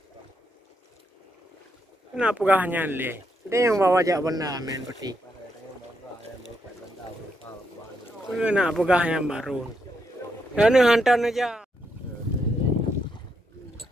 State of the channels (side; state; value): both; normal; correlation 0.79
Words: Kenapa gahnya le? Dia yang bawa jak benda main peti. Kenapa gahnya baru? Dan hantar aja.